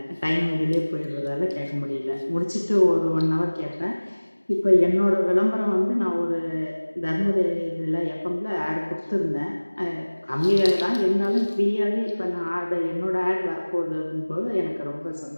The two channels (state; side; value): inverted; both; correlation -1.00